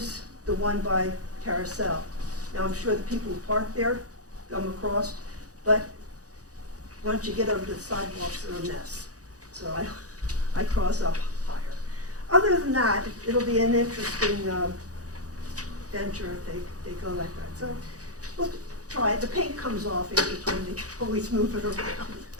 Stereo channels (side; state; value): left; late; 0.67 ms